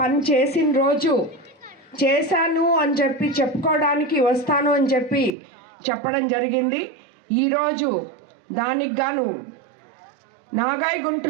చేసిన రోజు చేశాను అని చెప్పి చెప్పుకోవడానికి వస్తాను అని చెప్పి చెప్పడం జరిగింది. ఈరోజు దానికి గాను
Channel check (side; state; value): left; drops out; at 5.3 s